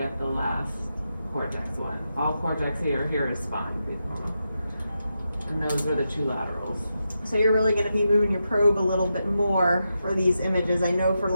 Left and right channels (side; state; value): both; inverted; correlation -0.87